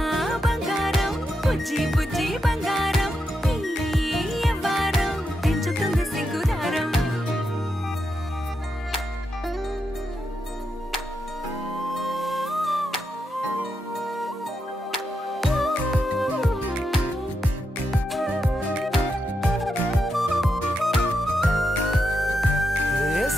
బంగారం బుజ్జి బుజ్జి బంగారం ఈ యవ్వారం పెంచుతుంది సిగ్గుదారం ఏ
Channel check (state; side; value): normal; both; correlation 0.84